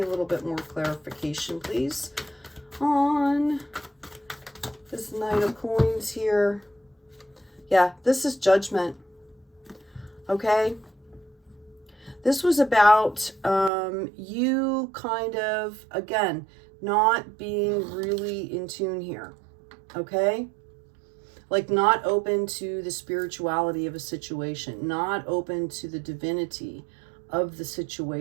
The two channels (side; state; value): left; drops out; at 13.7 s